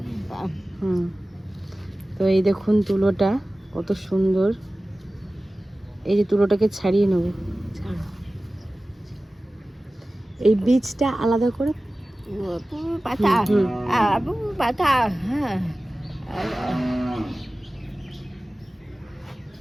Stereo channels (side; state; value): both; normal; correlation 0.97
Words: তো এই দেখুন তুলোটা কত সুন্দর। এই যে তুলোটাকে ছাড়িয়ে নেব, এই বীজটা আলাদা করে